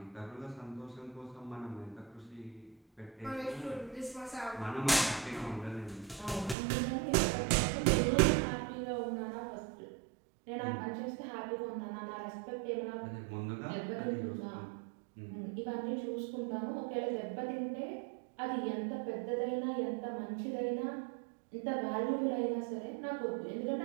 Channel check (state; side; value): drops out; left; at 6.6 s